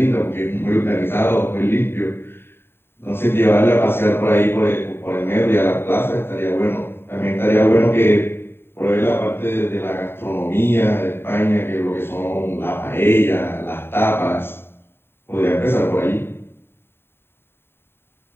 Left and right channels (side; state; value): right; late; 0.11 ms